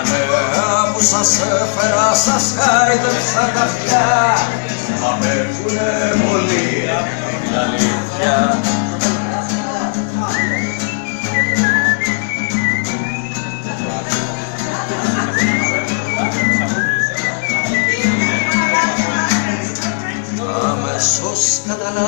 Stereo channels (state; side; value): silent; right; digital silence